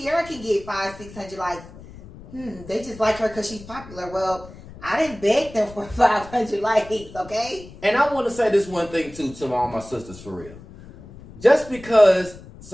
can get 500-600 likes. They just like her because she's popular. Well, I didn't beg them for 500 likes, okay? And I want to say this one thing, too, to all my sisters, for real. Just because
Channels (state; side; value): noise; left; rumble, 18 dB below the sound